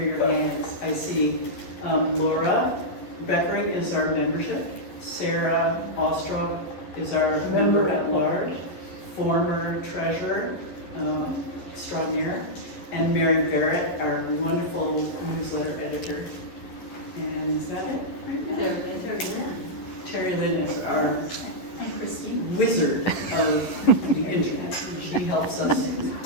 hands. I see Laura Beckering is our membership. Sarah Ostrov is our member at large, former treasurer extraordinaire, and Mary Barrett, our wonderful newsletter editor. And is that it right now? Terry Lynn is our wizard of the internet. She helps us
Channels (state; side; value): late; right; 11 ms